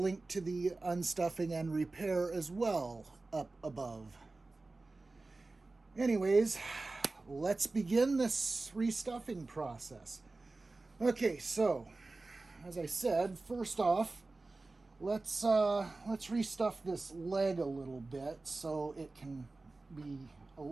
to the unstuffing and repair as well up above. Anyways, let's begin this restuffing process. Okay, so as I said, first off, let's restuff this leg a little bit so it can be a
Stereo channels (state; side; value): quieter; left; 3.4 dB